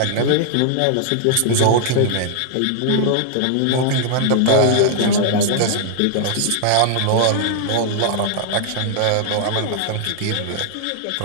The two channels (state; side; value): different; both; correlation 0.00